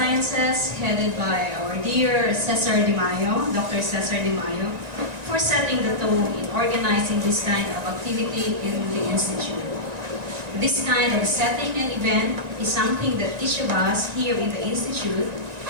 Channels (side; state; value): left; late; 1.9 ms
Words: headed by our dear Cesar De Mayo, Dr. Cesar De Mayo, for setting the tone in organizing this kind of activity in the Institute. This kind of setting and event is something that each of us here in the Institute,